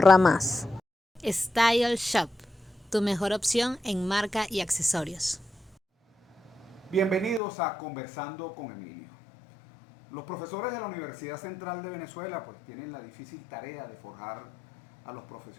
más. Style Shop, tu mejor opción en marca y accesorios. Bienvenidos a Conversando con Emilio. Los profesores de la Universidad Central de Venezuela pues tienen la difícil tarea de forjar a los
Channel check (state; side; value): drops out; right; at 7.4 s